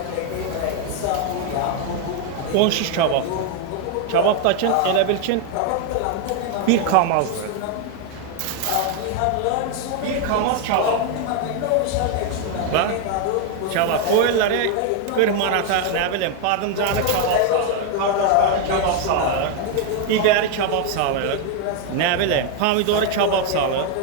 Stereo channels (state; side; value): different; both; correlation 0.01